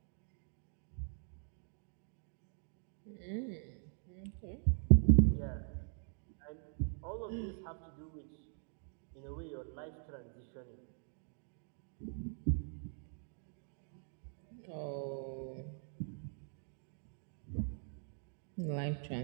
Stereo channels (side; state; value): left; silent; 50 dB below the other